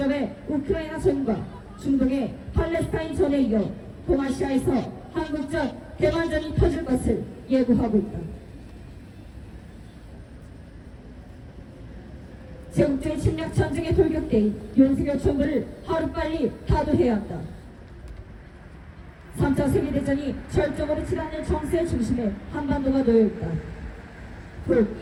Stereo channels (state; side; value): identical; both; correlation 1.00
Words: 우크라이나 전과 중동의 팔레스타인 전에 이어 동아시아에서 한국전 대만전이 터질 것을 예고하고 있다. 제국주의 침략 전쟁에 돌격된 윤석열 정부를 하루빨리 타도해야 한다. 3차 세계대전이 절정으로 치닫는 정세의 중심에 한반도가 놓여있다.